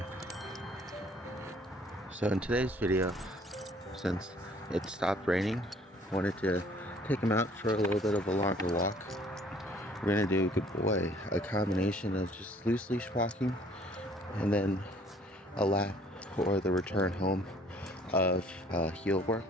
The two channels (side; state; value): both; normal; correlation 0.57